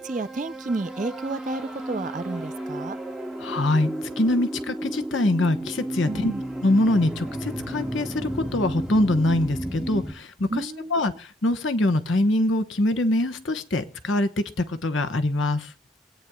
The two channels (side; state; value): both; normal; correlation 0.70